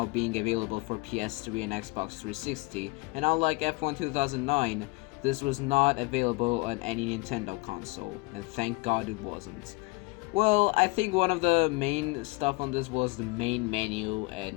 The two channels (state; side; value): quieter; right; 26.0 dB